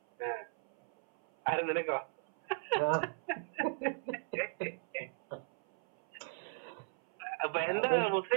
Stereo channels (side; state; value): left; silent; 54 dB below the other